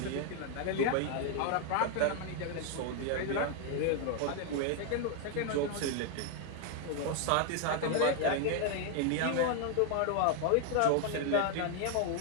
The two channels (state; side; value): different; both; correlation 0.00